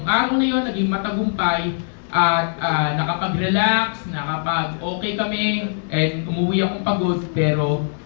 araw na yun, naging matagumpay at nakapag-relax, nakapag-okay kami, and umuwi akong pagod, pero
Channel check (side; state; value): right; silent; digital silence